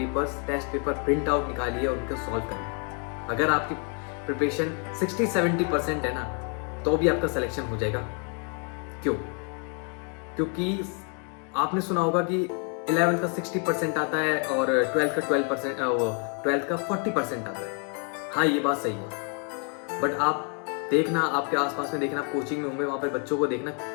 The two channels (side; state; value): right; quieter; 39.8 dB